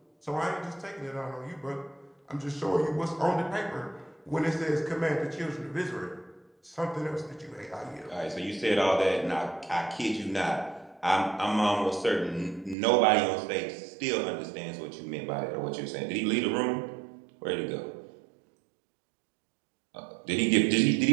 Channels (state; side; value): drops out; left; at 12.8 s